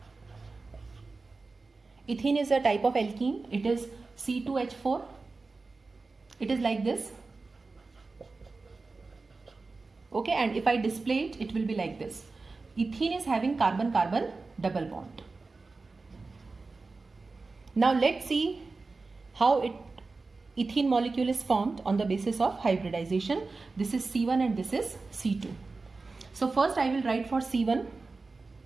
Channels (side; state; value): left; quieter; 3.8 dB